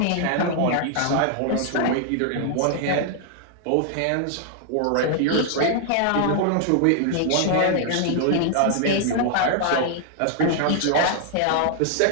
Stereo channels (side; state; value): both; different; correlation 0.00